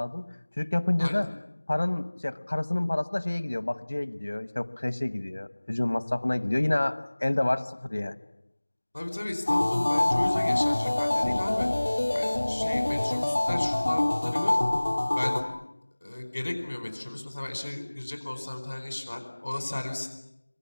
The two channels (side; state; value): both; inverted; correlation -1.00